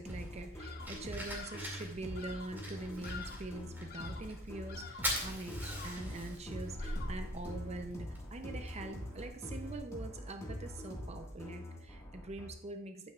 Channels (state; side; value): normal; both; correlation 0.55